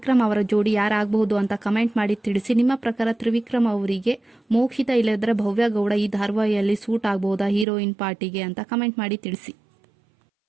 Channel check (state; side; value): drops out; left; at 7.7 s